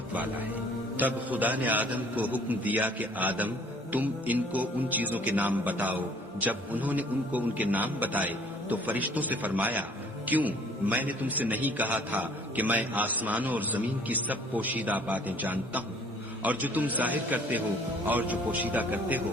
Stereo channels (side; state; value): both; normal; correlation 0.55